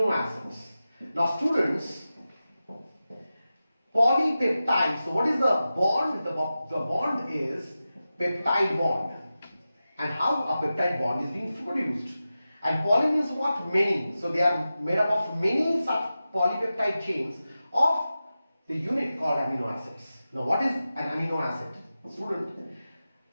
acids. Now students, polypeptide, so what is the bond? The bond is peptide bond. And how a peptide bond is being produced. And poly means what? Many. So they are made up of many such polypeptide chains of the unit called amino acids. Now what is an amino acid? Student,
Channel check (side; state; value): both; inverted; correlation -0.93